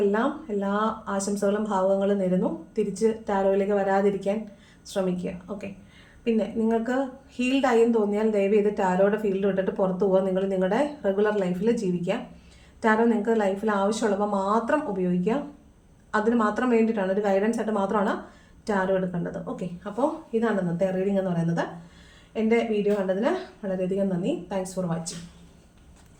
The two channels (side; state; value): both; identical; correlation 1.00